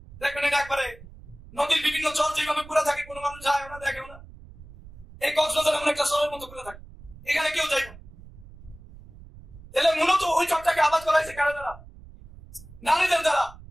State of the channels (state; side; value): noise; right; rumble, 19 dB below the sound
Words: দেখবেন এটা একবারে নদীর বিভিন্ন জল যেভাবে পুরা থাকে, কোনো মানুষ যায় না, দেখেও না। এই কক্সবাজার এমন একটা শহরের মতো পুরা থাকে, এখানে কেউ যাইব। তাহলে মূলত ওই চকটাকে আবাদ করা হয়েছে কারা দ্বারা? নারীদের দ্বারা।